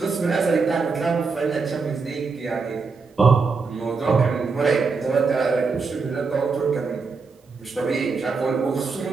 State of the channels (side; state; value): left; quieter; 4.6 dB